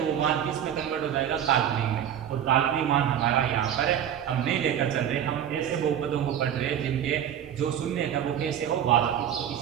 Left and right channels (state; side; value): quieter; left; 9.7 dB